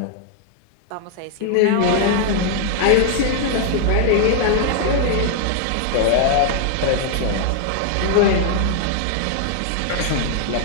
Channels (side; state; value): both; different; correlation 0.00